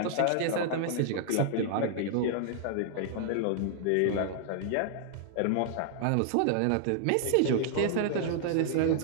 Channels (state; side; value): different; both; correlation -0.01